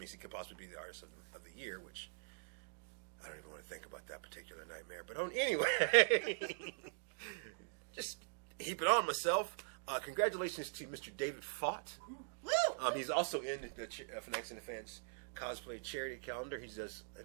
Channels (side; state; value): left; silent; digital silence